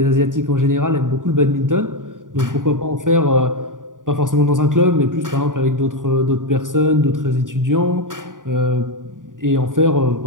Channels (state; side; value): late; left; 0.88 ms